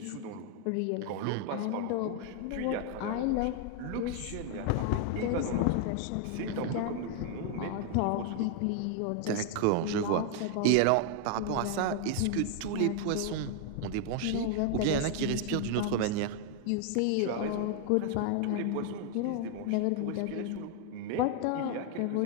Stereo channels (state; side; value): different; both; correlation 0.00